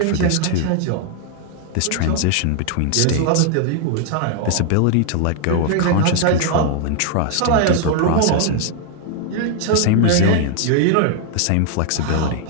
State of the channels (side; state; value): both; different; correlation 0.00